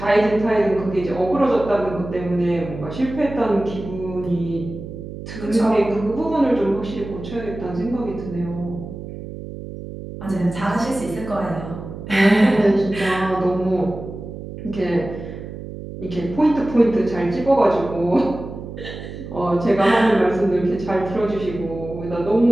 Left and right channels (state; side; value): noise; right; hum, 10 dB below the sound